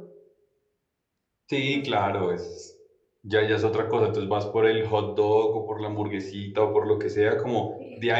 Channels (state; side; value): identical; both; correlation 1.00